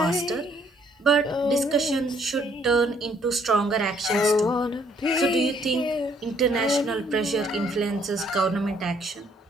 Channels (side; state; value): both; normal; correlation 0.65